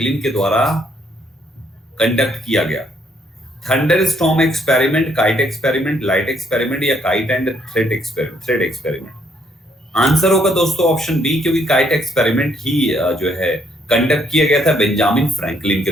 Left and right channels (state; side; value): normal; both; correlation 0.69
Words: के द्वारा कंडक्ट किया गया? Thunderstorm experiment, kite experiment, light experiment या kite and thread experiment? Answer होगा दोस्तों ऑप्शन बी, क्योंकि काइट एक्सपेरिमेंट ही जो है कंडक्ट किया गया था बेंजामिन फ्रैंकलिन के